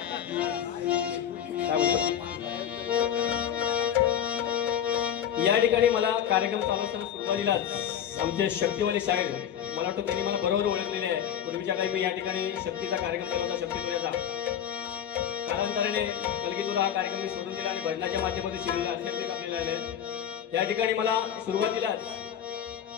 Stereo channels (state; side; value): quieter; right; 9.4 dB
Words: या ठिकाणी मला कार्यक्रम चालू असताना सुरुवातीलाच आमचे शक्तीवाली साहेब, मला वाटतं त्यांनी मला बरोबर ओळखलेले आहे. पूर्वीच्या काही मी या ठिकाणी शक्तीचा कार्यक्रम केला होता, शक्तीपुऱ्याचा. कालांतराने कलगीतुरा हा कार्यक्रम मी सोडून दिला आणि भजनाच्या माध्यमातून शिरले अत्यंत आपल्याला आले. या ठिकाणी मला सुरुवातीलाच